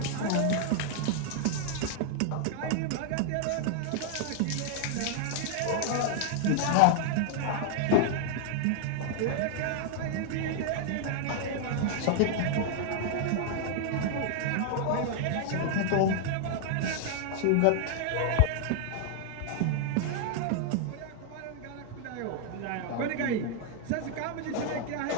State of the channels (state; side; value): different; both; correlation 0.00